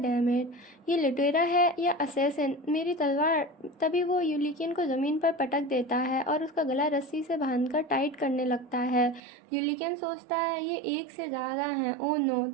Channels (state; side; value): drops out; left; at 9.2 s